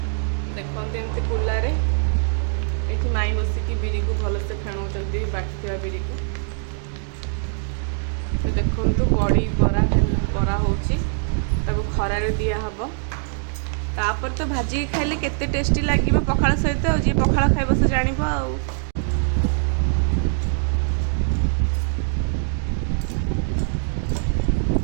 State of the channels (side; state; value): left; silent; 64 dB below the other